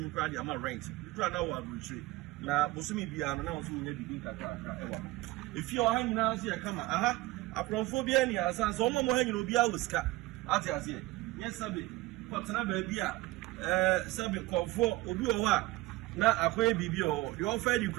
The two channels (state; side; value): quieter; left; 19.1 dB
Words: kura dia ma rent kura na wa retreat na bosumi bia no na wo so nya bibi kakra ewa if you are hanging out here kama aprophobia ni asa so mo hanging obi a wuska ati ase yes sabe kwatena ba bia sabe kofo obi o wa na akoye bibi o de ofa di